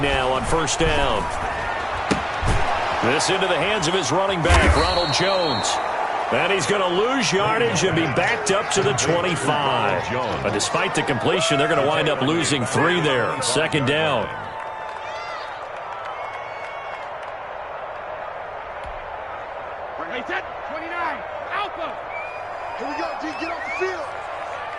on first down. This into the hands of his running back, Ronald Jones. And he's going to lose yardage and be backed up to the 25. But despite the completion, they're going to wind up losing 3 there. 2nd down. Here we go, G, get off the field.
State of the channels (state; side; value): identical; both; correlation 1.00